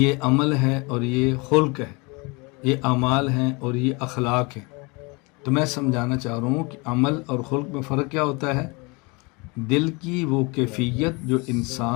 عمل ہے اور یہ خلق ہے، یہ اعمال ہیں اور یہ اخلاق ہیں۔ تو میں سمجھانا چاہ رہا ہوں کہ عمل اور خلق میں فرق کیا ہوتا ہے؟ دل کی وہ کیفیت جو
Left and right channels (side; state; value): right; quieter; 28.1 dB